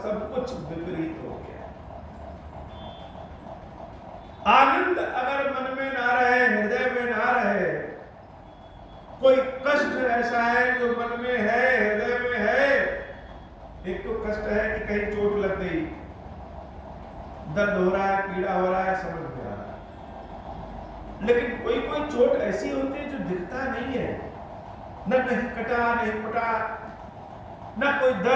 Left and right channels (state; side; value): identical; both; correlation 1.00